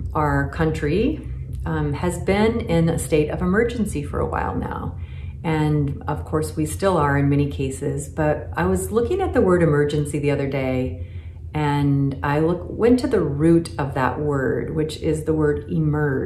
our country, has been in a state of emergency for a while now. And of course we still are in many cases, but I was looking at the word emergency the other day and I went to the root of that word, which is the word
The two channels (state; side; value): identical; both; correlation 1.00